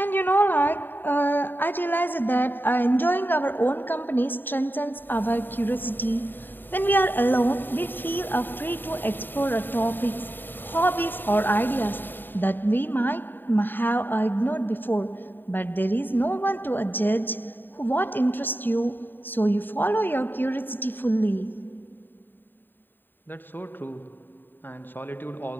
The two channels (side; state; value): right; late; 0.093 ms